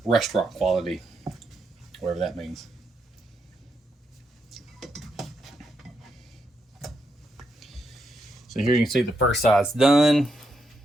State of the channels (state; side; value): normal; both; correlation 0.81